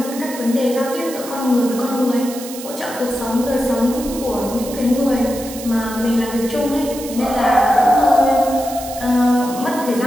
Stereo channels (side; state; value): right; noise; hiss, 12 dB below the sound